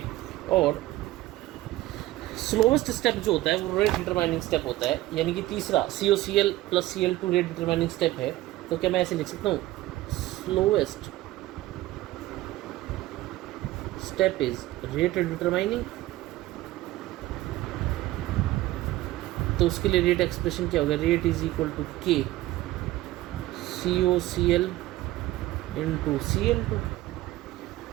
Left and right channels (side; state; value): left; quieter; 16.7 dB